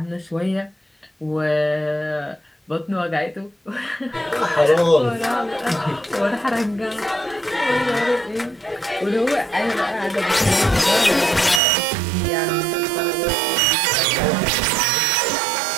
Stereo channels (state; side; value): drops out; left; at 11.6 s